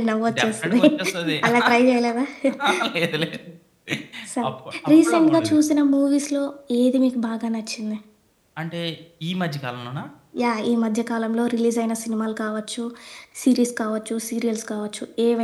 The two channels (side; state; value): both; identical; correlation 1.00